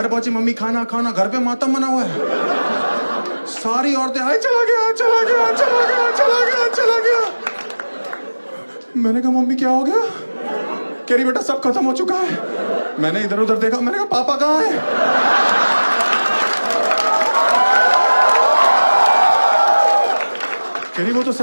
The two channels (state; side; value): inverted; both; correlation -1.00